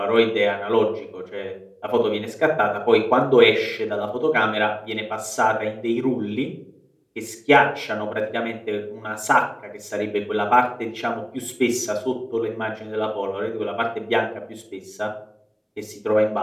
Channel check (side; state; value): both; identical; correlation 1.00